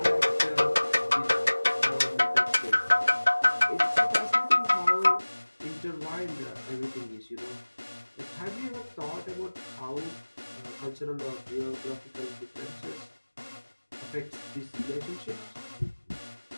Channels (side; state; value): both; inverted; correlation -1.00